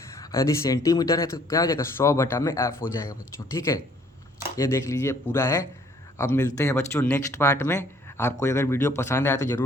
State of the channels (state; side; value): normal; both; correlation 0.60